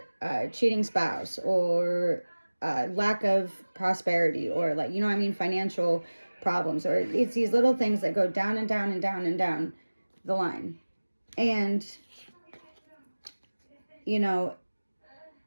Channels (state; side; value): inverted; both; correlation -1.00